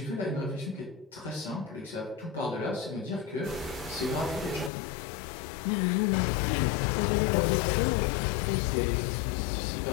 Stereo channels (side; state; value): right; drops out; at 4.7 s